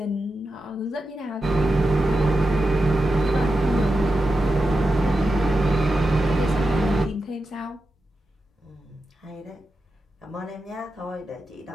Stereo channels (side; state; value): both; normal; correlation 0.90